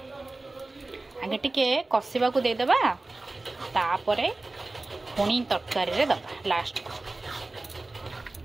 आगे टिके कसिबा को दे देबा तापरे पुणी तरकारी रे दबा लास्ट को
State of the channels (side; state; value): left; quieter; 3.1 dB